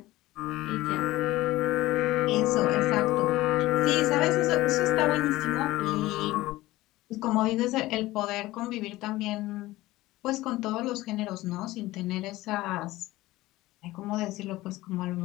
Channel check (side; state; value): right; quieter; 17.9 dB